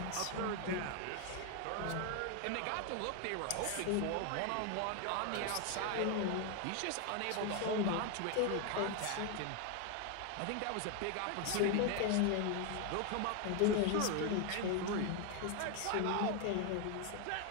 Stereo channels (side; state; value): both; different; correlation 0.01